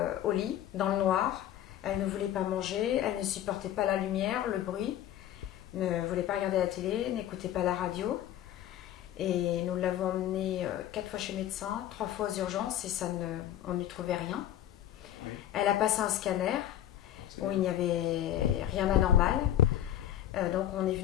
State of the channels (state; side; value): quieter; right; 11.8 dB